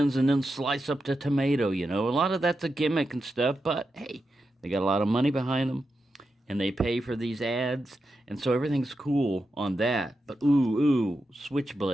and then slice up the tomato. A lot of that's a gimmick and stuff, but hey, they got a lot of money behind them and they pay for these ads, and so everything's cool on that. But ooh,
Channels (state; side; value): normal; both; correlation 0.88